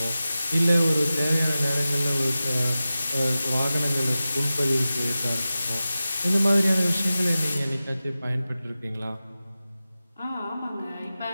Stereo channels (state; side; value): inverted; both; correlation -0.94